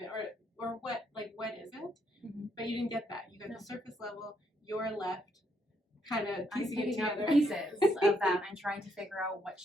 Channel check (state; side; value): normal; both; correlation 0.74